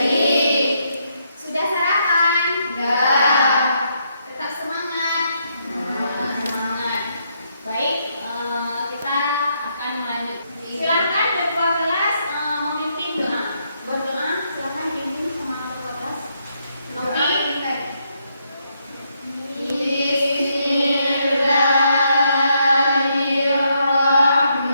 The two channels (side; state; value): both; inverted; correlation -0.76